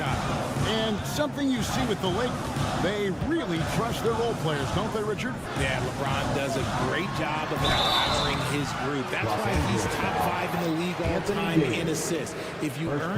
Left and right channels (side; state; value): both; identical; correlation 1.00